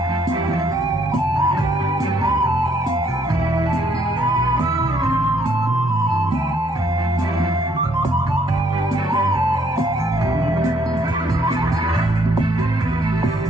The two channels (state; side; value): normal; both; correlation 0.67